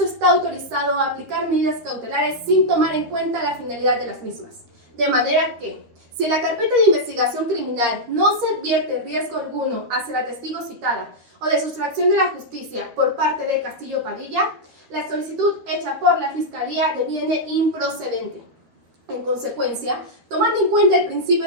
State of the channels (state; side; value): late; left; 12 ms